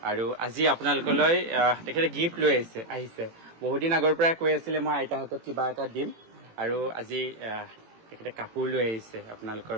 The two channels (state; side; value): late; left; 18 ms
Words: আৰু আজি আপোনালোকলৈ তেখেতে গিফ্ট লৈ আহিছে। বহুদিন আগৰ পৰা কৈ আছিলে মই আইতাৰ হাতত কিবা এটা দিম, আৰু আজি তেখেতে কাপোৰ লৈ আহিছে আপোনালোকৰ